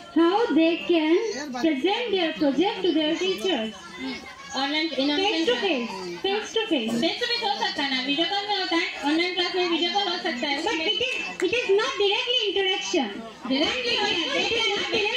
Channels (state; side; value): identical; both; correlation 1.00